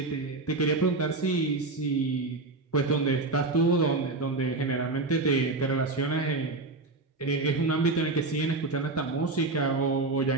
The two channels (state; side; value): quieter; left; 3.4 dB